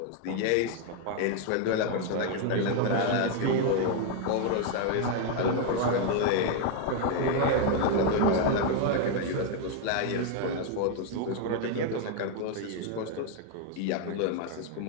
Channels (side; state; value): both; different; correlation 0.01